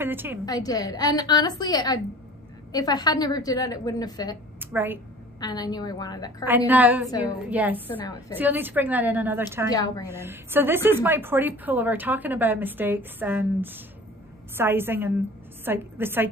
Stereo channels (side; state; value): both; normal; correlation 0.45